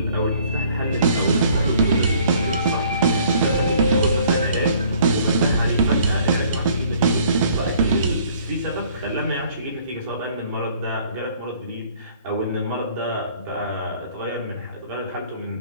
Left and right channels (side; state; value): both; inverted; correlation -0.58